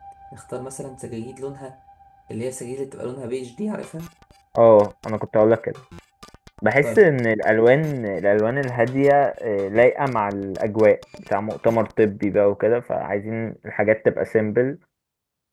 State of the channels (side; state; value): both; identical; correlation 1.00